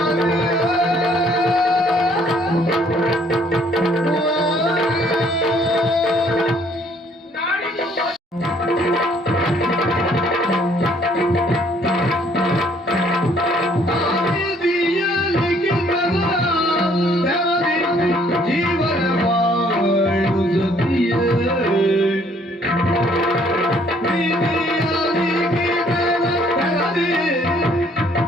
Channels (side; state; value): both; normal; correlation 0.63